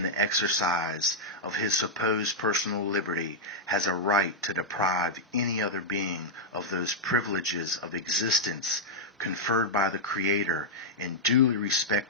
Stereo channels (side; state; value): both; normal; correlation -0.05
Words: the exercise of his supposed personal liberty has a right to deprive any other being of those privileges of existence conferred by the Creator and duly